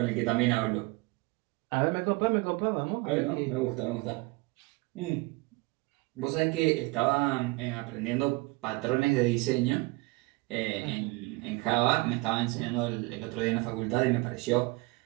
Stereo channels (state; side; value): quieter; left; 23.9 dB